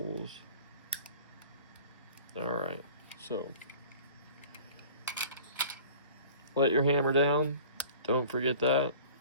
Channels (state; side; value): inverted; both; correlation -0.44